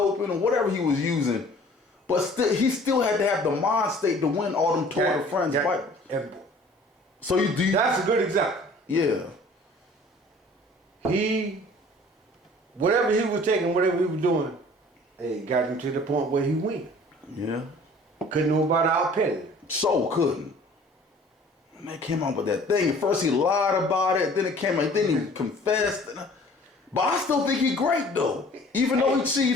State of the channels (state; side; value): normal; both; correlation 0.50